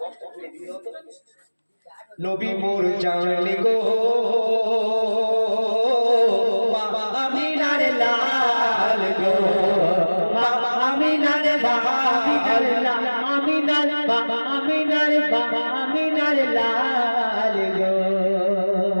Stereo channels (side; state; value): both; inverted; correlation -1.00